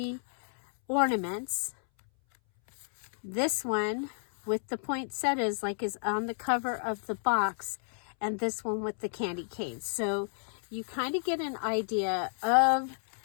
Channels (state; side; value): silent; right; 57 dB below the other